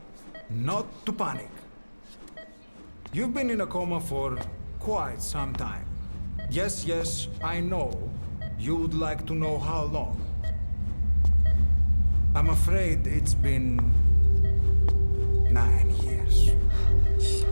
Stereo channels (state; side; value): inverted; both; correlation -1.00